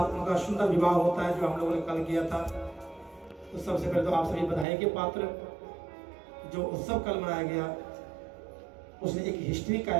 उनका सुंदर विवाह होता है जो हम लोगों ने कल किया था। तो सबसे पहले तो आप सभी बधाई के पात्र। जो उत्सव कल मनाया गया उसने एक हिस्ट्री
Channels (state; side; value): drops out; left; at 4.7 s